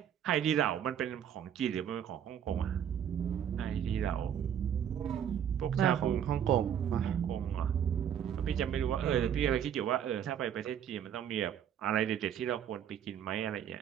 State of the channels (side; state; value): left; quieter; 9.2 dB